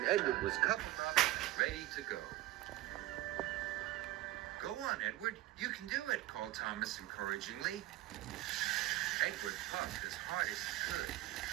Edward was coupled up and ready to go. "Go on, Edward. You can do it," called Thomas encouragingly. Edward puffed as hard as he could,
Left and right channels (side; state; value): left; quieter; 16.4 dB